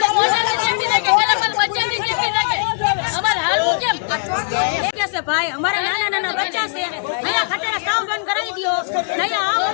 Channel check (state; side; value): silent; right; 66 dB below the other